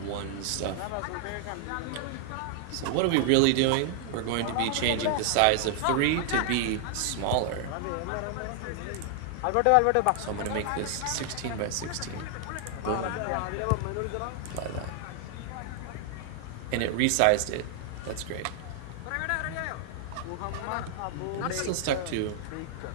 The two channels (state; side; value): different; both; correlation 0.00